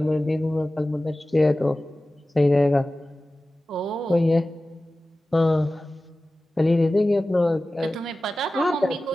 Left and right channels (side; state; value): both; normal; correlation 0.96